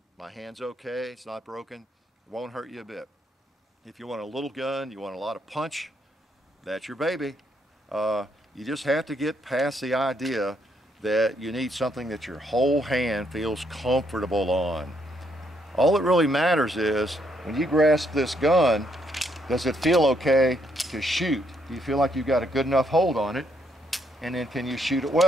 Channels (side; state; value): both; normal; correlation 0.73